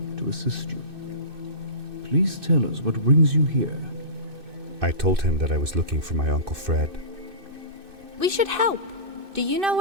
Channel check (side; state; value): left; late; 2.6 ms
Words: to assist you. Please tell us what brings you here. I told him that I was looking for my Uncle Fred. We should help. Do you know